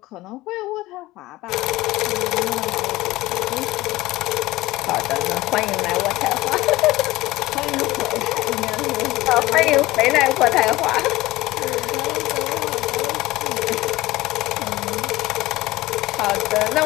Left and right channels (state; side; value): quieter; right; 18.4 dB